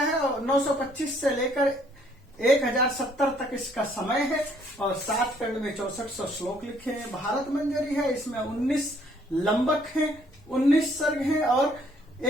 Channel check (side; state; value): both; normal; correlation 0.64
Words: और 925 से लेकर 1070 तक इसका समय है और 7 खंड में 6400 श्लोक लिखे हैं। भारत मंजरी है, इसमें 19 लंबक हैं, 19 सर्ग हैं और